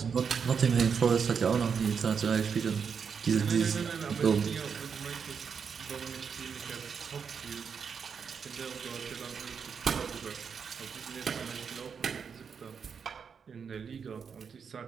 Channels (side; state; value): left; quieter; 6.4 dB